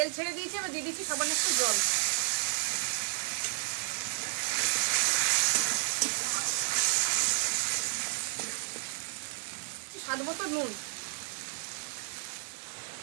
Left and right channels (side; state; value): left; silent; digital silence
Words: ছেড়ে দিয়েছি, এবার দিয়ে দিচ্ছি সামান্য একটু জল। স্বাদ মতো নুন।